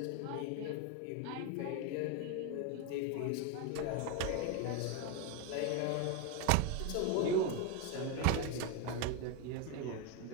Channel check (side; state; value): both; different; correlation 0.01